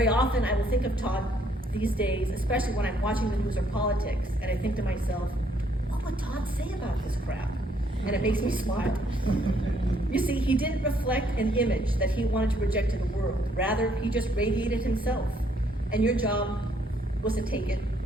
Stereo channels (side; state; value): both; normal; correlation 0.68